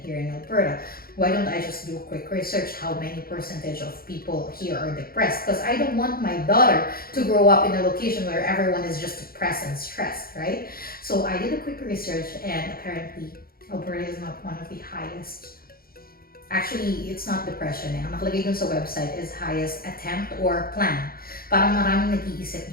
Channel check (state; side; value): late; right; 0.43 ms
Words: here in Alberta. Why don't I just do a quick research how many percentage of people here are depressed? Because I don't want my daughter to grow up in a location where everyone is just depressed and stressed, right? So I did a quick research and apparently Alberta is not one of the highest. Actually, it's not depression Ang nakalagay dun sa website is highest attempt or plan. Parang maraming nag-iisip